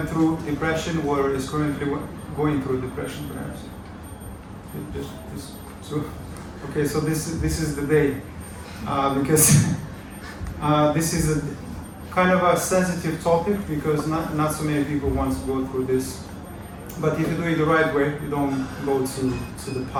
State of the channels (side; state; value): both; identical; correlation 1.00